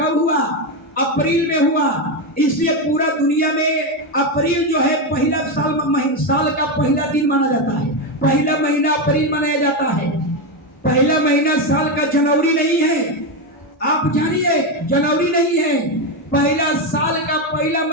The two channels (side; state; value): both; normal; correlation 0.10